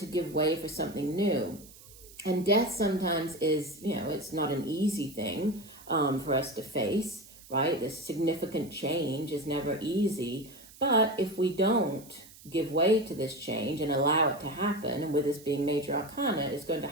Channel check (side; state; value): right; noise; hiss, 21 dB below the sound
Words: give way for something new. And death sometimes is, it's not an easy thing for us to face, right? This significant change is never easy. But if we don't give way to this change and allow it to happen. And with this being major arcana, it's going to